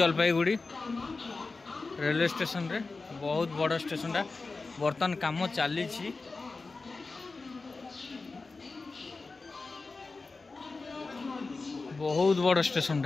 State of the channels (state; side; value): quieter; right; 3.8 dB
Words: रेलवे स्टेशन रे। बहुत बड़ स्टेशन टा बर्तमान काम चली। बहुत बड़ स्टेशन